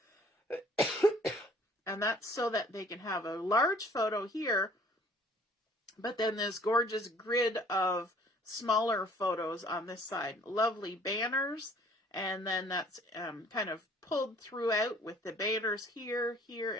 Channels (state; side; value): normal; both; correlation 0.55